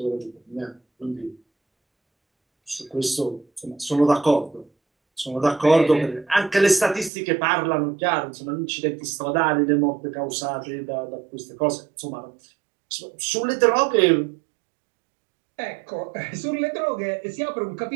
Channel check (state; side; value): drops out; left; at 7.1 s